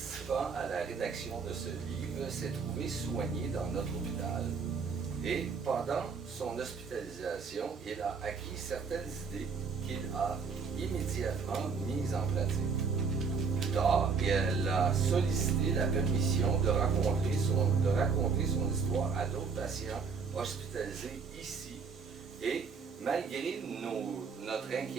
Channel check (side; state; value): left; quieter; 5.4 dB